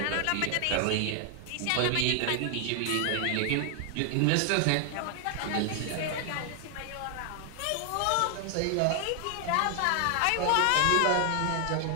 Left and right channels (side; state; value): both; different; correlation 0.00